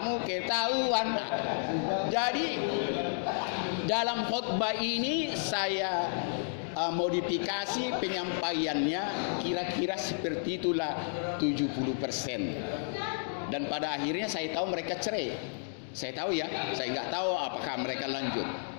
ketahuan. Jadi dalam khotbah ini saya modifikasi penyampaiannya kira-kira seperti itulah 70%. Dan pada akhirnya saya tahu mereka cerai. Saya tahu ya, saya nggak tahu apakah mereka lanjut.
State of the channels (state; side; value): silent; right; digital silence